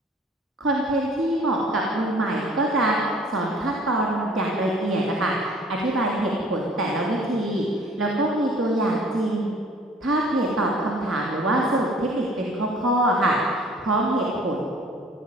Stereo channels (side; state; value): both; normal; correlation 0.52